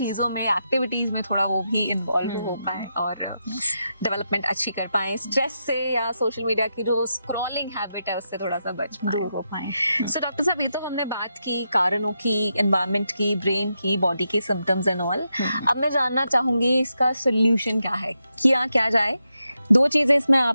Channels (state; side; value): inverted; both; correlation -0.85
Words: में, एक्टिविटीज में थोड़ा वो भी इन्वॉल्व हो पाए और डेवलपमेंट अच्छी कर पाए, स्ट्रेस से या सोशल मीडिया की जो स्क्रॉलिंग हैबिट है उससे थोड़ा सा बच पाए। सो डॉक्टर साहब, ये तो हमने बात की कारणों की, एनवायरनमेंट की, ब्रेन की, बॉडी के सिम्टम्स एंड ऑल। अब मैं जानना चाहूंगी इसका सोल्यूशन क्या है, किया क्या जाए। 2 चीजें इसमें